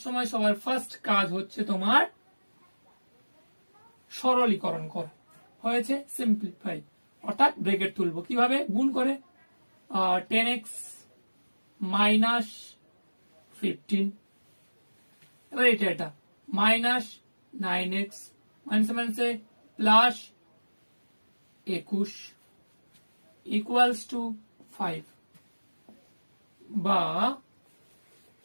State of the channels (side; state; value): both; inverted; correlation -1.00